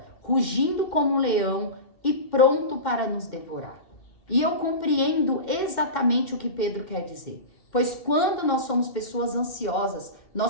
rugindo como um leão e pronto para nos devorar. E eu compreendo exatamente o que Pedro quer dizer, pois quando nós somos pessoas ansiosas,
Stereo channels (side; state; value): right; late; 2.1 ms